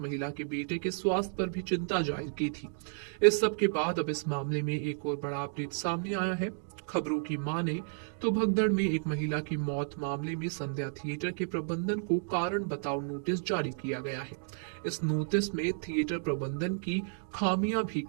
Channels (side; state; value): left; silent; 56 dB below the other